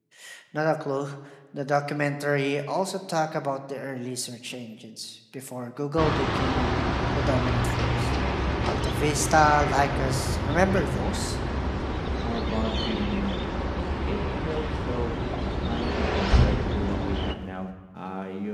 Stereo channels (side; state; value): both; identical; correlation 1.00